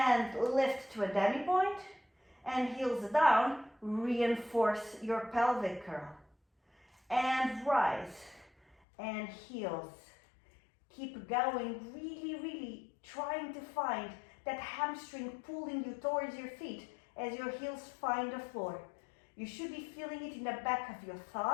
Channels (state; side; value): drops out; right; at 8.8 s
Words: lift to a demi-point, and heels down, reinforce your pelvic curl. And rise, and heels. Keep going, really trying to find that hamstring pulling you towards your feet as your heels find the floor. You should be feeling it in the back of your